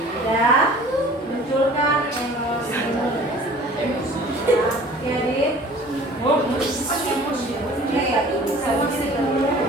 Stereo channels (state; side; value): normal; both; correlation 0.47